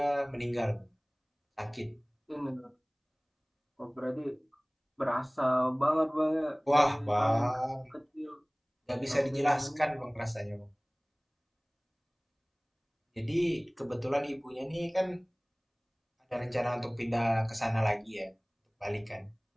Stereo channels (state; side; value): identical; both; correlation 1.00